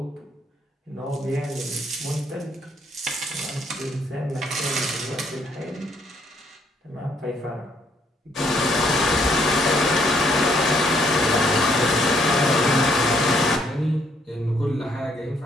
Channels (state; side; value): normal; both; correlation 0.69